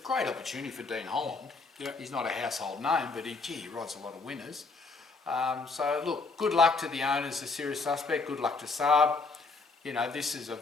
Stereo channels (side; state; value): right; quieter; 3.9 dB